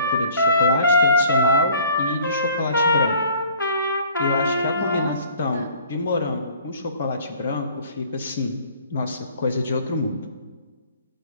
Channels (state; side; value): inverted; both; correlation -0.53